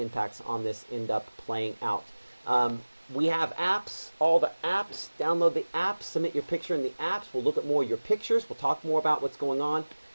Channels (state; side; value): inverted; both; correlation -1.00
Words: on this end up playing out. We have apps, all the apps. Download the apps, submit your picture in the apps. We'll look at more of your pictures. We'll talk more about what's going on. And